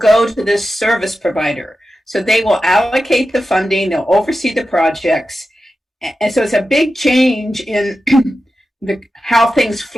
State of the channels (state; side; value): normal; both; correlation 0.92